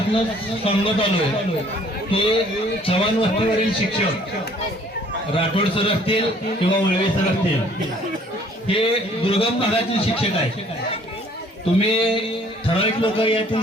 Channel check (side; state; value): both; normal; correlation 0.58